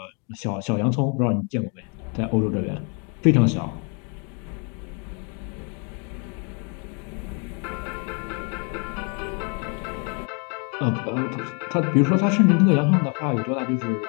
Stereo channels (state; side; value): quieter; right; 36.7 dB